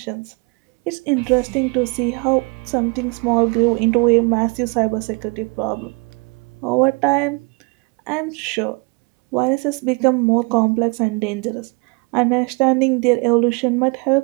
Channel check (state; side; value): quieter; left; 31.5 dB